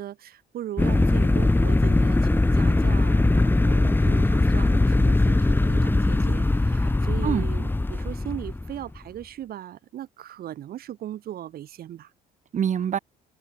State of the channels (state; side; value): normal; both; correlation 0.94